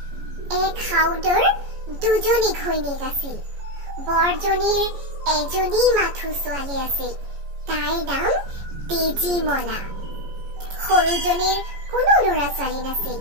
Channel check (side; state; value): left; late; 14 ms